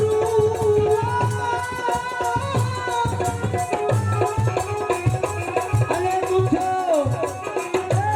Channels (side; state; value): both; identical; correlation 1.00